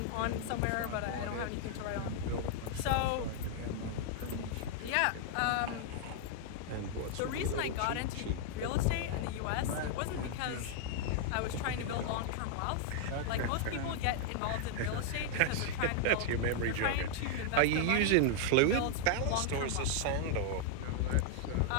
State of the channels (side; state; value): both; different; correlation -0.01